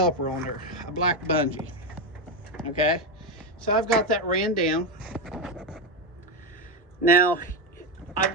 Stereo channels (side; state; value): both; normal; correlation 0.09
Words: on there, a black bungee. Okay, so I've got that ran down. Now, I've